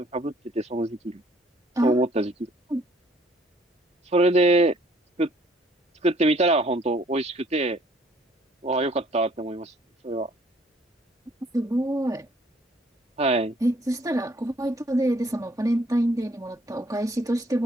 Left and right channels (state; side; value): normal; both; correlation 0.61